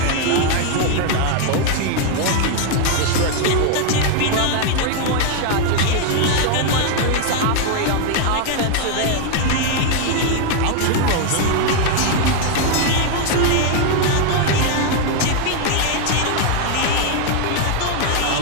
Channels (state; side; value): different; both; correlation 0.00